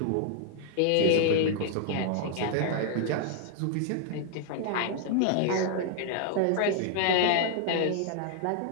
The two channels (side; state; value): both; different; correlation 0.00